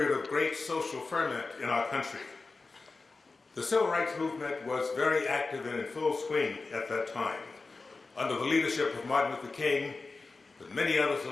of great social ferment in our country. The civil rights movement was very active and in full swing at that time, under the leadership of Martin Luther King, but many others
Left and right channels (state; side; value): quieter; right; 3.8 dB